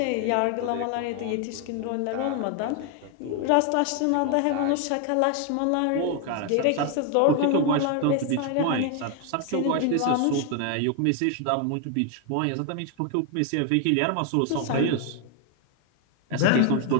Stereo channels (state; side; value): different; both; correlation 0.01